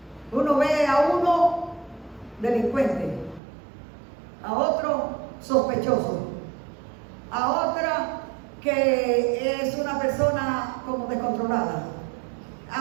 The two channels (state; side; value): drops out; left; at 3.4 s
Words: Uno ve a uno delincuente, a otro sospechoso, a otra que es una persona como descontrolada,